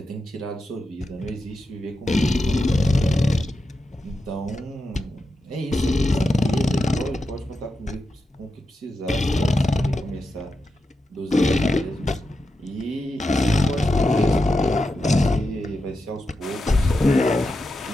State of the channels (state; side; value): normal; both; correlation 0.89